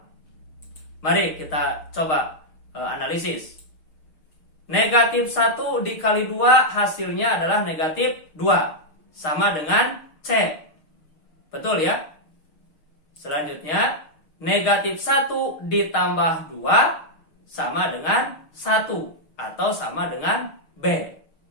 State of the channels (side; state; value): right; late; 6.5 ms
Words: Mari kita coba analisis. Negatif 1 dikali 2 hasilnya adalah negatif 2. Sama dengan C. Betul ya? Selanjutnya, negatif 1 ditambah 2 sama dengan 1 atau sama dengan B.